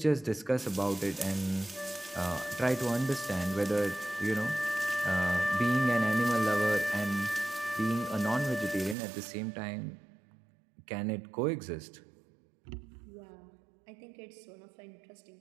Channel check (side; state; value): left; drops out; at 9.0 s